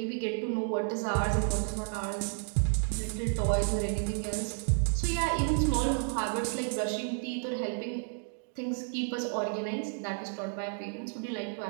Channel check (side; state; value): left; silent; 57 dB below the other